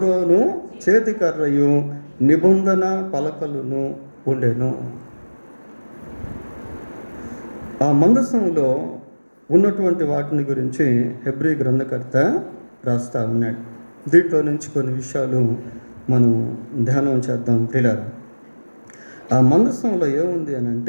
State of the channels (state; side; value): inverted; both; correlation -1.00